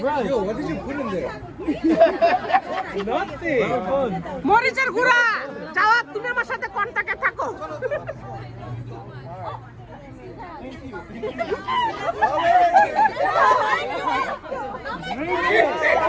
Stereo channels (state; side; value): identical; both; correlation 1.00